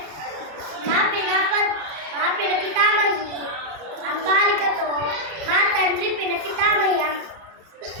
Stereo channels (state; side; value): late; left; 31 ms